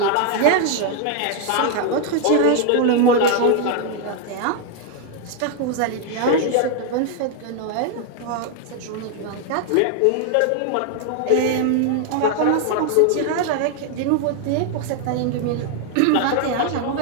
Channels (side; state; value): both; different; correlation 0.00